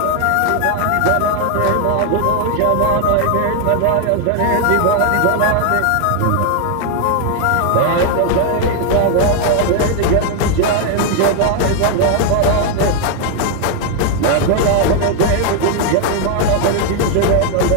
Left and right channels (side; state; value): both; different; correlation 0.00